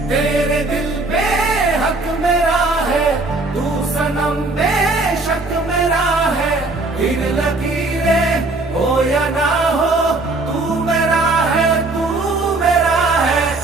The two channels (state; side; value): quieter; left; 3.1 dB